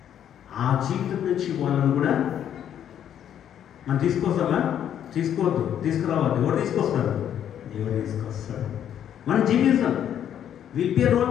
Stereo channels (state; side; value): quieter; right; 9.8 dB